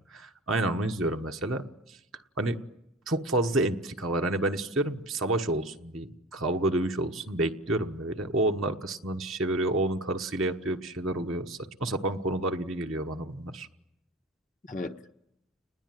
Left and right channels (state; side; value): normal; both; correlation 0.34